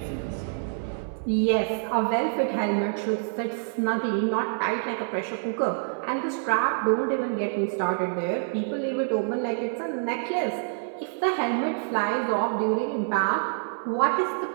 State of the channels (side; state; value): left; silent; 60 dB below the other